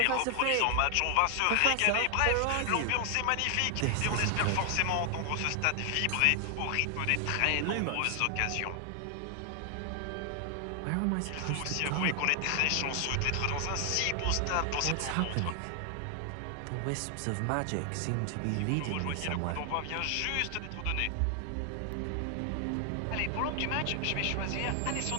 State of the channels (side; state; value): both; different; correlation 0.00